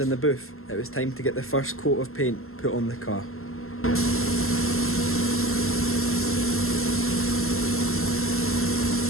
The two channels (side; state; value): right; late; 0.62 ms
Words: the booth, it was time to get the first coat of paint put on the car.